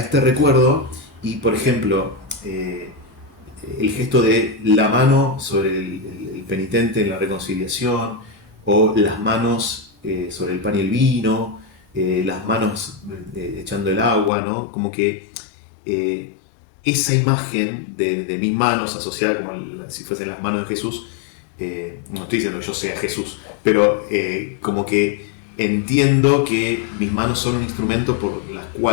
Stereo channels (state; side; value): drops out; right; at 14.3 s